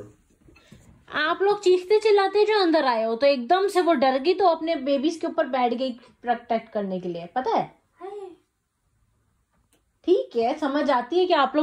आप लोग चीखते चिल्लाते जो अंदर आए हो तो एकदम से वो डर गई तो अपने बेबीज के ऊपर बैठ गई प्रोटेक्ट करने के लिए. पता है. ठीक है समझ आती है कि आप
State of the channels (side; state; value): both; identical; correlation 1.00